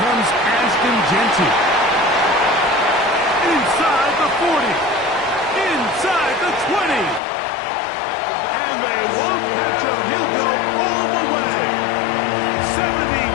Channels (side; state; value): right; drops out; at 7.2 s